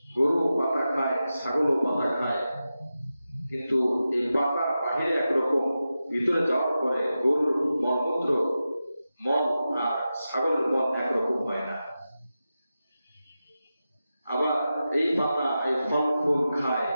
গরু পাতা খায়, ছাগলও পাতা খায়, কিন্তু এই পাতা বাহিরে একরকম, ভিতরে যাওয়ার পরে গরুর মলমূত্র, মল আর ছাগলের মল একরকম হয় না। আবার এই পাতা, এই ফল ফুল খায়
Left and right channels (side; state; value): both; inverted; correlation -0.92